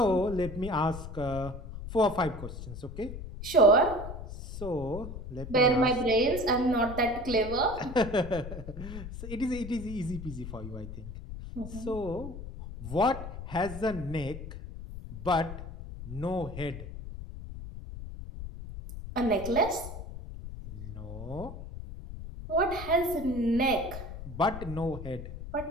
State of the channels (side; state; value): left; noise; rumble, 10 dB below the sound